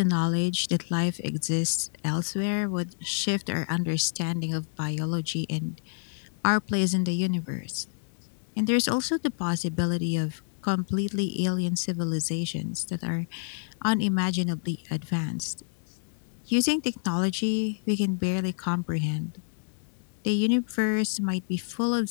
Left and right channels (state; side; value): silent; right; digital silence